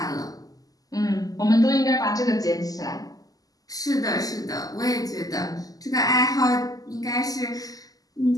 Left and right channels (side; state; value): right; late; 0.17 ms